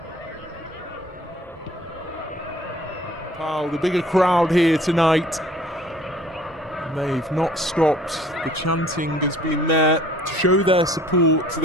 Nepal, the bigger crowd here tonight. They've not stopped. The chanting has been there to show their support to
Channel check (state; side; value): normal; both; correlation 0.53